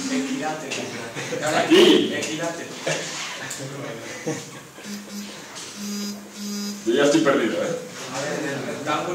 Equilátero. Aquí. Equilátero. Yo ya estoy perdido, ¿eh? A ver, en el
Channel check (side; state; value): both; identical; correlation 1.00